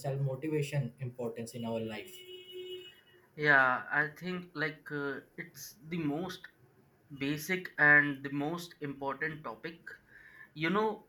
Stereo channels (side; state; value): both; identical; correlation 1.00